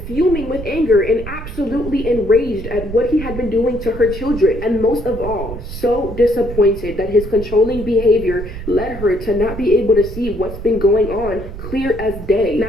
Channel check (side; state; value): right; noise; rumble, 10 dB below the sound